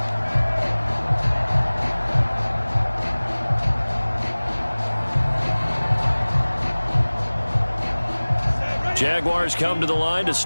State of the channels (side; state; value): both; inverted; correlation -1.00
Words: Jaguars come to the line to